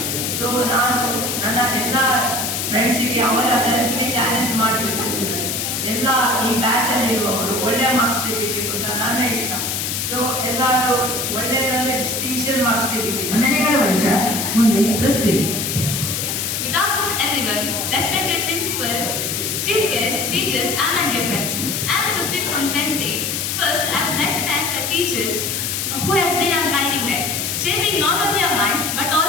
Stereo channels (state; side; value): noise; left; hiss, 1 dB below the sound